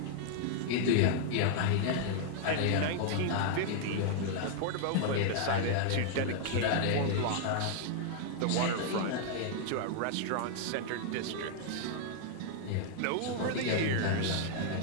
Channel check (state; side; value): different; both; correlation -0.01